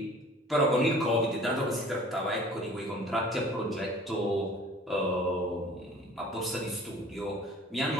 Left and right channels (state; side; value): normal; both; correlation 0.48